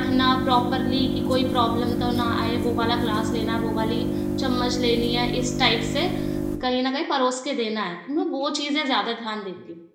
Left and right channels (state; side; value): identical; both; correlation 1.00